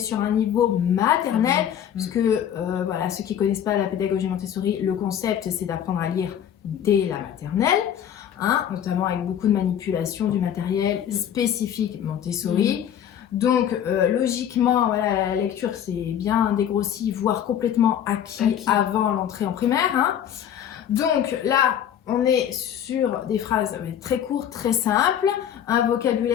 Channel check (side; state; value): right; quieter; 9.6 dB